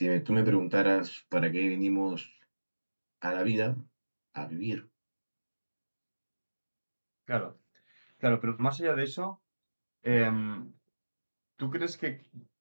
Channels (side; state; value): both; inverted; correlation -1.00